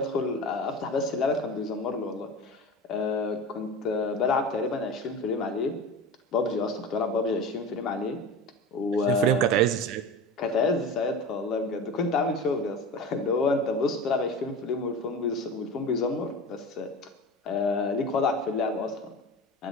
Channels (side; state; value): both; normal; correlation 0.31